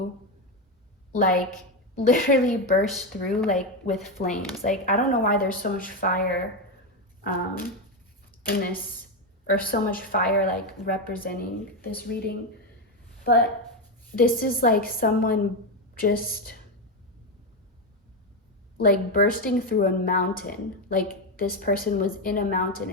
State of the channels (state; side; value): normal; both; correlation 0.10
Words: like literally burst through like with flames. Like, I don't know why there's so much fire in this, or so much fire like representing this reading, but this is like someone just like bursting through a mountain. Like this person was in a mountain,